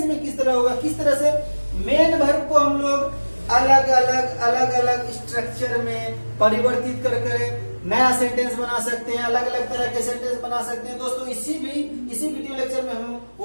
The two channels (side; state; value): both; inverted; correlation -1.00